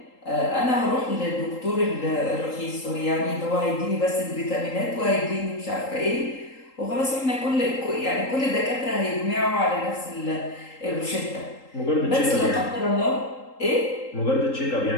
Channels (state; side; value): late; right; 3.8 ms